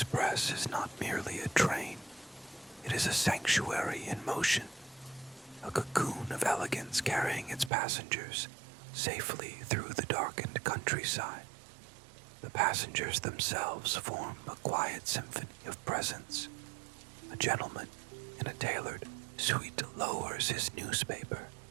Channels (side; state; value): left; drops out; at 7.7 s